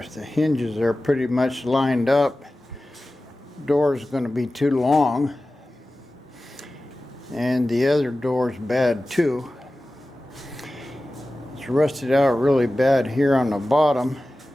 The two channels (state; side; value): normal; both; correlation 0.96